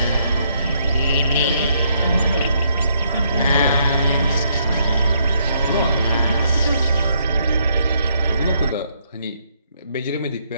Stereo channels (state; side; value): inverted; both; correlation -0.71